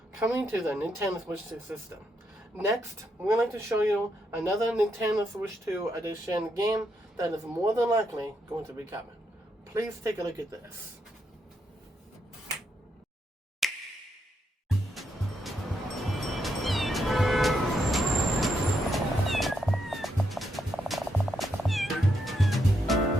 coming to the Nintendo Switch 2 system. Next, we're going to show you another Nintendo Switch 2 Edition game that is more than likely going to be coming. Please take a look at this.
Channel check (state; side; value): normal; both; correlation 0.80